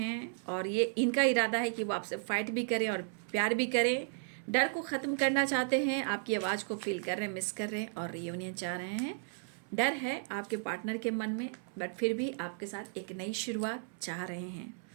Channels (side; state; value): left; silent; 55 dB below the other